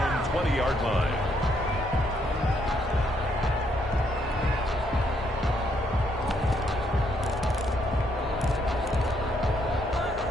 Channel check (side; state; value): both; normal; correlation 0.73